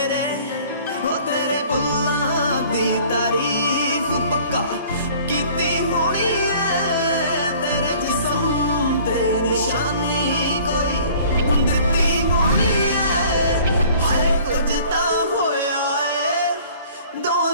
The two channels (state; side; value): inverted; both; correlation -0.51